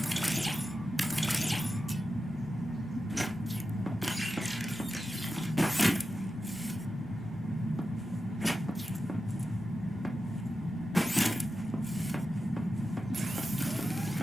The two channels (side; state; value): both; normal; correlation 0.91